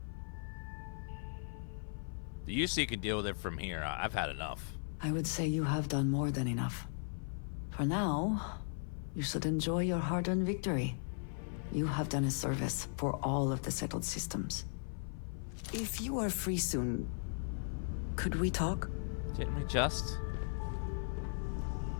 The UC can deal with it from here. I've had enough. I would say you have done more than enough. For now, you should enjoy your hard-earned victory. You have done a service for all of the settled systems. If you are free soon, could we talk? Didn't we just?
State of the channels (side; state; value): right; silent; 53 dB below the other